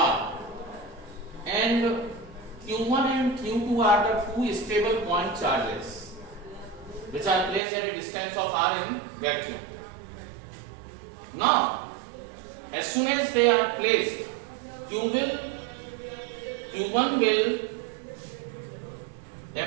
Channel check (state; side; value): drops out; left; at 7.6 s